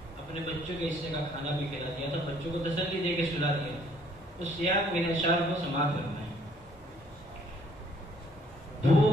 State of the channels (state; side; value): normal; both; correlation 0.62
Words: اپنے بچوں کے حصے کا کھانا بھی کھلا دیا تھا، بچوں کو تسلی دے کے سلا دیا تھا۔ اس سیاق میں اشعار کو سماعت کرنا ہے۔